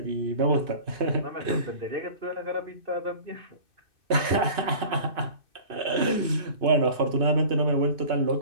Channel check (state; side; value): late; left; 2.6 ms